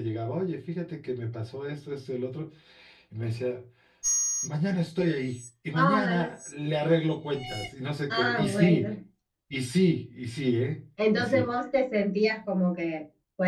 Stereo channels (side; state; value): both; identical; correlation 1.00